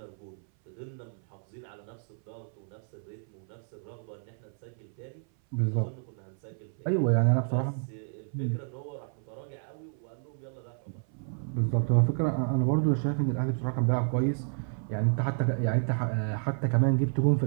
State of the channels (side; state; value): left; silent; 58 dB below the other